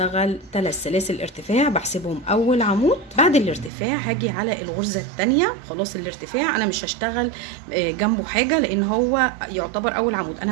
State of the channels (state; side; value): drops out; left; at 3.7 s